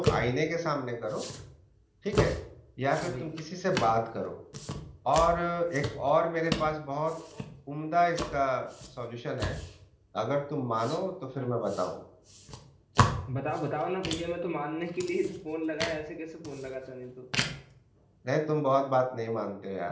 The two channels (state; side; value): identical; both; correlation 1.00